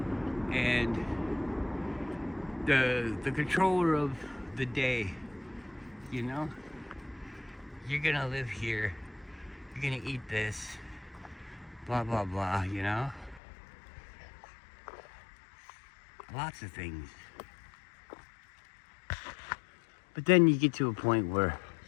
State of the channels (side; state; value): right; drops out; at 13.4 s